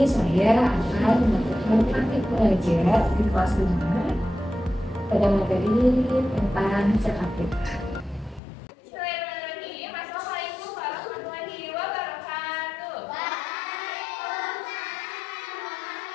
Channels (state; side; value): drops out; right; at 8.4 s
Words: saya akan melakukan praktik belajar di kelas 5 pada materi tentang zakat fitrah. Assalamualaikum warahmatullahi wabarakatuh.